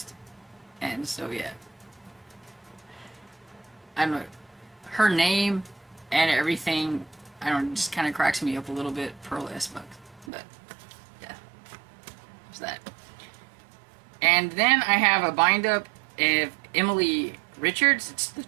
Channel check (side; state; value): left; drops out; at 10.3 s